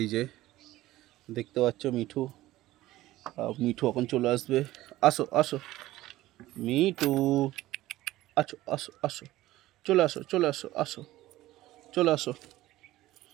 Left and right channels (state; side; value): quieter; left; 16.3 dB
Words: যে দেখতে পাচ্ছ মিঠু মিঠু এখন চলে আসবে। আসো আসো মিঠু, আসো আসো আসো, চলে আসো চলে আসো, আসো চলে আসো।